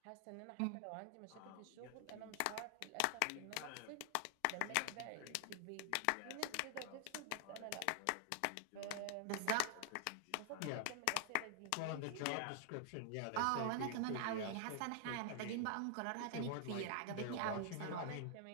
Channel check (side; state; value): both; different; correlation 0.00